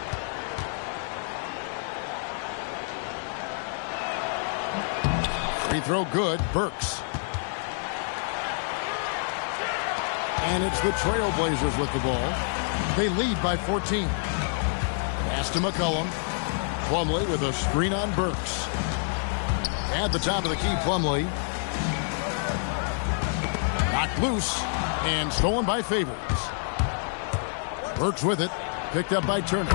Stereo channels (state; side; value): silent; right; digital silence